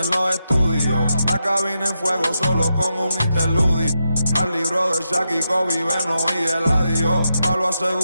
los estudios. La cabina en fuego solo con un interludio. Al libro de Shaq y Kobe, Beno y Eladio. Palo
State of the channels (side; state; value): both; inverted; correlation -0.86